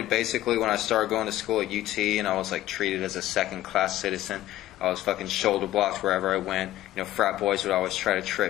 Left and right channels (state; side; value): quieter; right; 14.5 dB